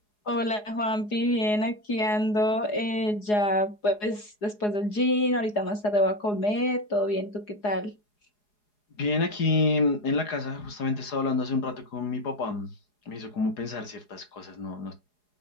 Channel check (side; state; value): right; late; 4.8 ms